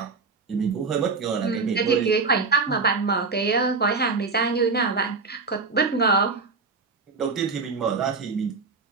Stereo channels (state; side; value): quieter; left; 4.5 dB